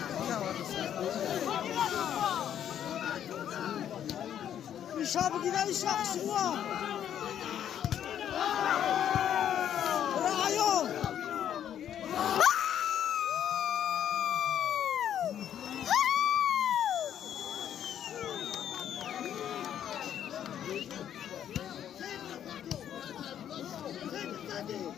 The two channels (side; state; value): right; quieter; 9.9 dB